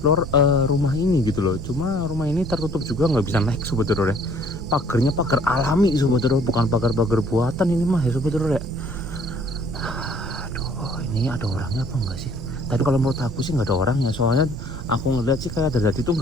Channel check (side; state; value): right; noise; rumble, 11 dB below the sound